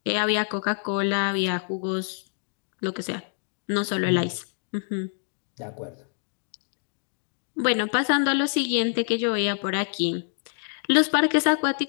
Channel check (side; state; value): right; silent; digital silence